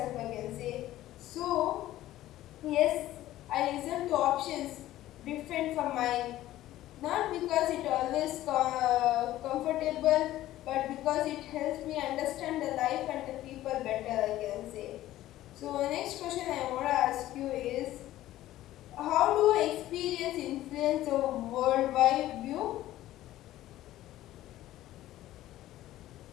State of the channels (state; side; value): quieter; right; 14.6 dB